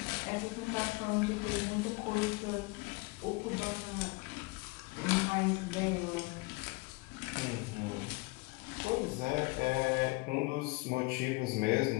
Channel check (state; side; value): quieter; right; 26.1 dB